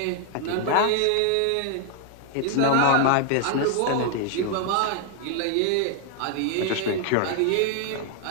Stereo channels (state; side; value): different; both; correlation 0.00